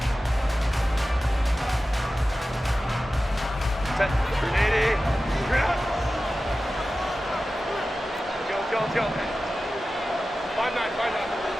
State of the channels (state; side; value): normal; both; correlation 0.95